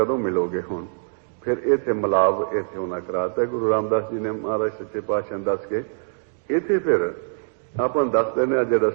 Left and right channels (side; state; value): left; silent; digital silence